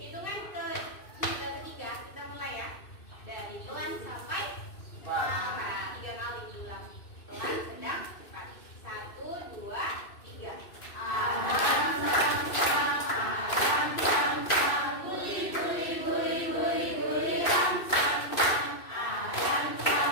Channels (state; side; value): late; right; 2.6 ms